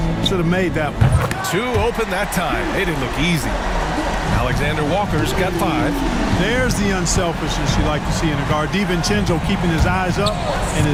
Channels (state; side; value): identical; both; correlation 1.00